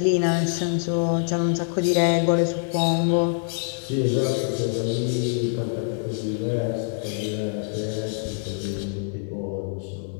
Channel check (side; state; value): right; silent; digital silence